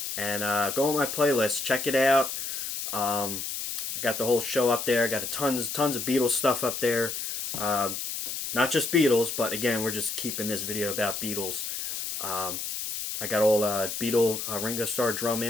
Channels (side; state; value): left; noise; hiss, 4 dB below the sound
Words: And go on my playlist, check it out. I got the whole show up there. Got tons of Beatles stuff up there. Not just Beatles, but again, we're just keeping this video about Beatles. I got all Ringo Starr drum